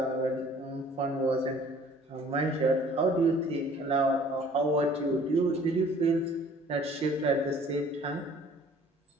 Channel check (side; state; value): both; normal; correlation 0.53